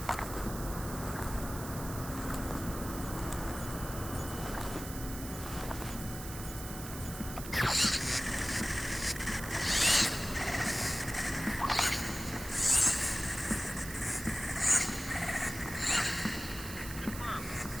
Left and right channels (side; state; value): right; noise; hiss, 11 dB below the sound